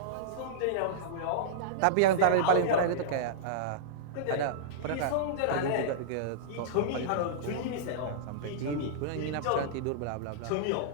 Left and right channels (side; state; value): both; different; correlation -0.03